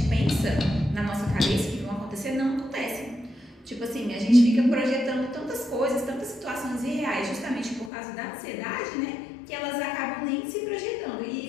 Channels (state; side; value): drops out; right; at 7.9 s